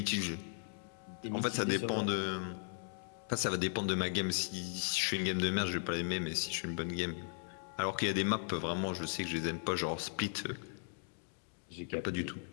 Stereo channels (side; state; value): right; silent; digital silence